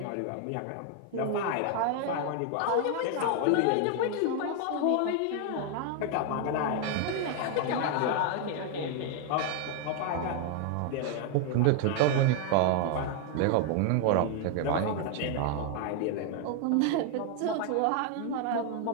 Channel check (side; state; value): both; different; correlation 0.00